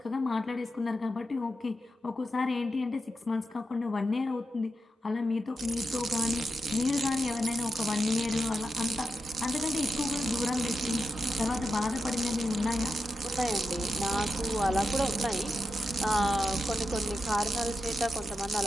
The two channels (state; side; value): normal; both; correlation 0.88